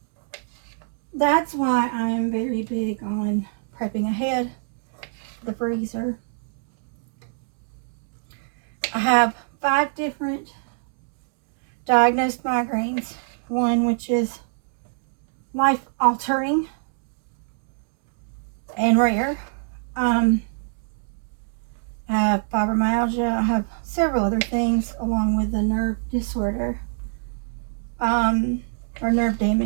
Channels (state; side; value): silent; left; digital silence